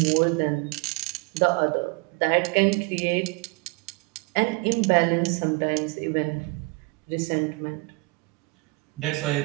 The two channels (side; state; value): left; quieter; 28.1 dB